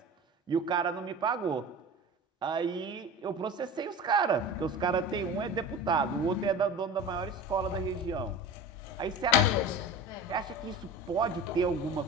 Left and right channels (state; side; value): normal; both; correlation 0.33